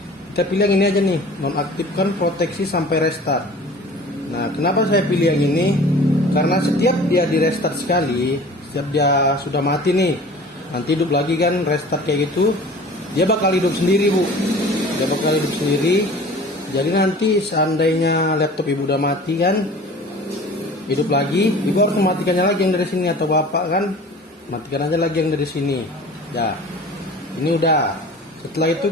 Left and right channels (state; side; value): normal; both; correlation 0.43